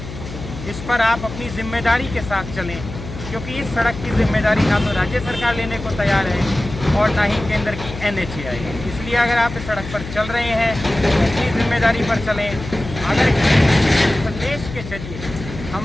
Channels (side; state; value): left; noise; hum, 11 dB below the sound